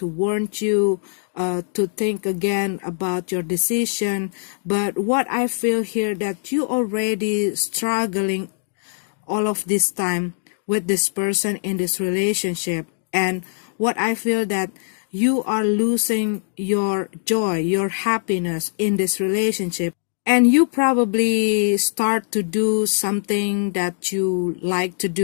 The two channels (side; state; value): right; silent; digital silence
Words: warn you to think again about your decision. But what I feel here that you already struggling all of this time with this person in this relationship. And what I feel that you are losing your joy, your happiness in this relationship. And you probably start to do something that you like to